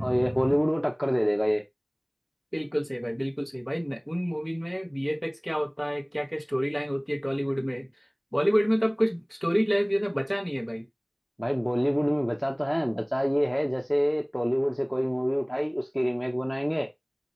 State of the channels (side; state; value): both; identical; correlation 1.00